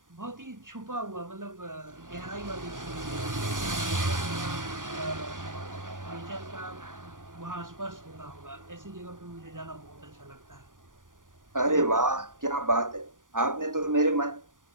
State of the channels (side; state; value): left; late; 0.88 ms